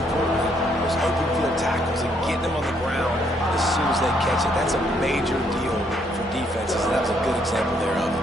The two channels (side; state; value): both; normal; correlation 0.70